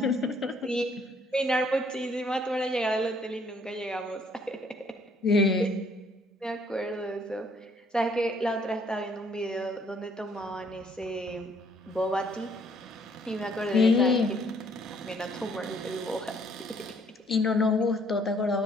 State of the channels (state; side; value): normal; both; correlation 0.64